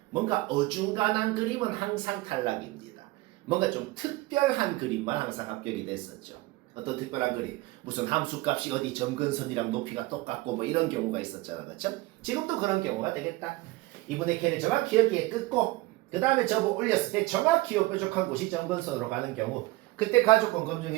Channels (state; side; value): quieter; left; 20.4 dB